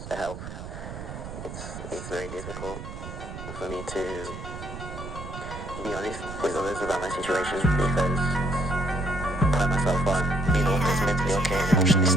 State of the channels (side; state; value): right; noise; rumble, 10 dB below the sound